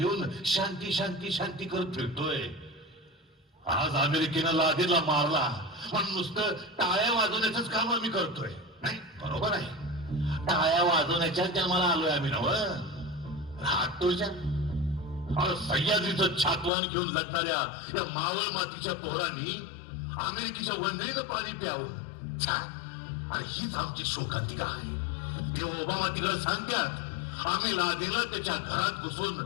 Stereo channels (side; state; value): right; drops out; at 16.7 s